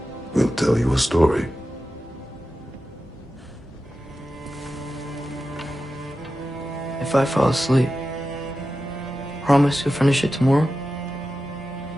will tell you a story. If I fall asleep, promise you'll finish it tomorrow?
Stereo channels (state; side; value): normal; both; correlation 0.92